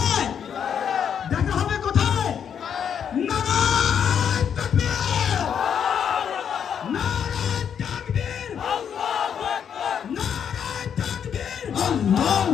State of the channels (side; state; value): right; quieter; 8.0 dB